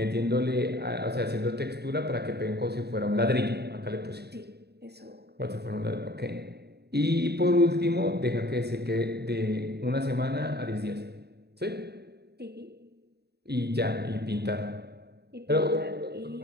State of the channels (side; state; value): left; late; 0.48 ms